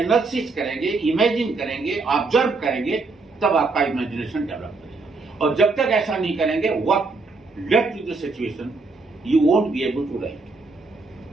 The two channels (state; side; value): quieter; left; 3.8 dB